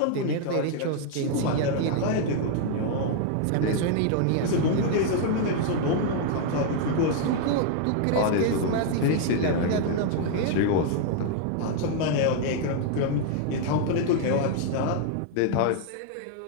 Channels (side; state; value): both; different; correlation 0.00